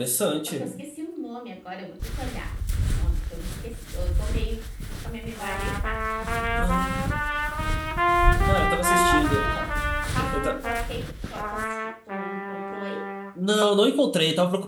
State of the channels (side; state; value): both; identical; correlation 1.00